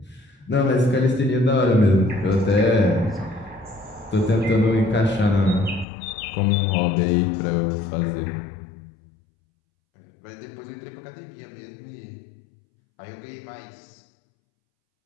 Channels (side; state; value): right; drops out; at 5.9 s